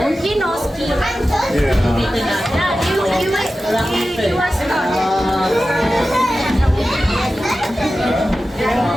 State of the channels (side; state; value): both; normal; correlation 0.94